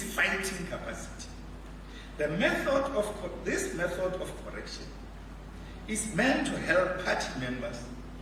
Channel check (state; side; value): identical; both; correlation 1.00